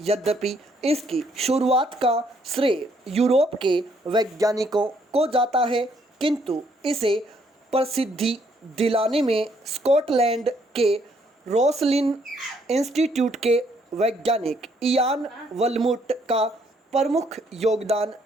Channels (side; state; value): both; normal; correlation 0.68